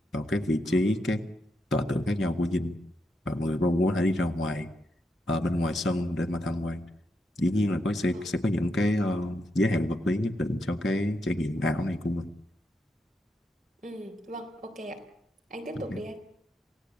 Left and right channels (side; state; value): both; normal; correlation 0.82